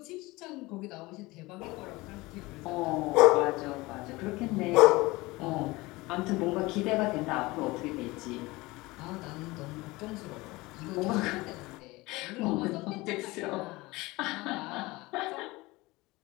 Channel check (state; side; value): quieter; right; 21.6 dB